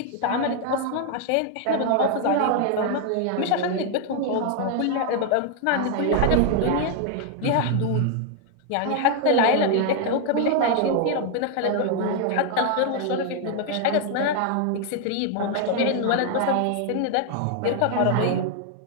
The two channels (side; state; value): both; different; correlation 0.00